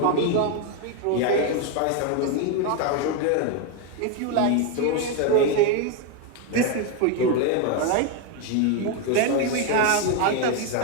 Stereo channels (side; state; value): both; different; correlation 0.02